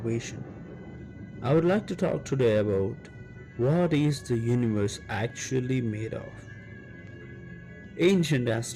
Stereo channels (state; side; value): identical; both; correlation 1.00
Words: I would like to talk today about what is the universe actually made of. Ancient